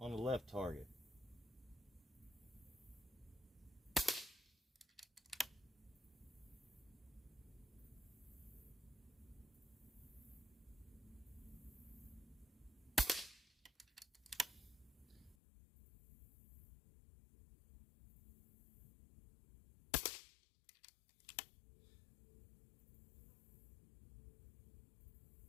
on the left target.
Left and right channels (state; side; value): drops out; right; at 15.4 s